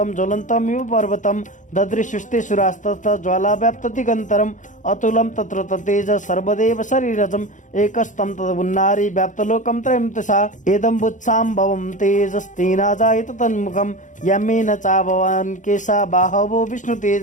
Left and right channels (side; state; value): right; late; 0.37 ms